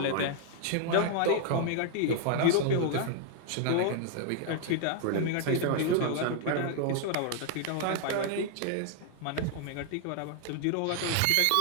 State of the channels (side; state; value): both; different; correlation 0.00